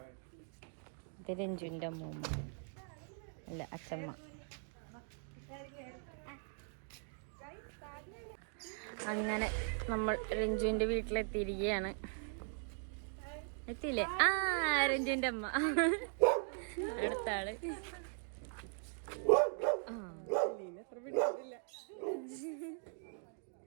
ഇത് രഞ്ജുവിന്റെ അമ്മൂമ്മ അല്ല അച്ഛമ്മ. അങ്ങനെ നമ്മൾ രഞ്ജുവിന്റെ വീട്ടിലെത്തിയിരിക്കുകയാണ്. എത്തിയില്ലേ? രഞ്ജുവിന്റെ അമ്മ അടുത്ത ആള്.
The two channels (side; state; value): left; silent; 51 dB below the other